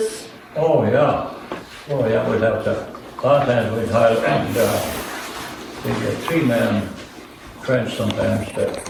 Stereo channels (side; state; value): both; identical; correlation 1.00